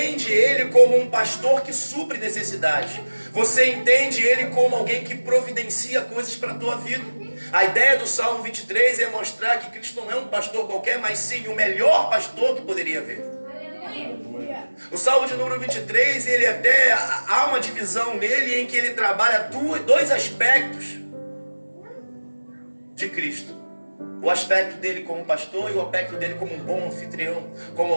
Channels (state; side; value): inverted; both; correlation -1.00